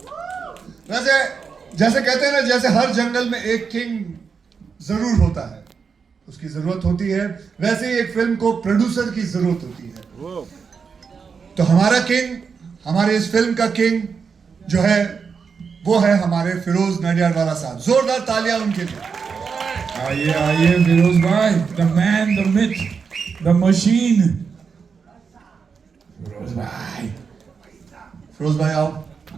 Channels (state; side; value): quieter; left; 5.8 dB